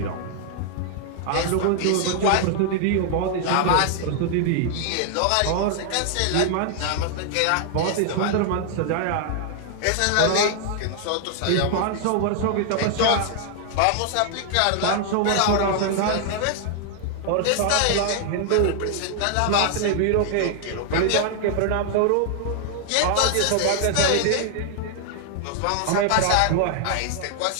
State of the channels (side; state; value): both; different; correlation 0.00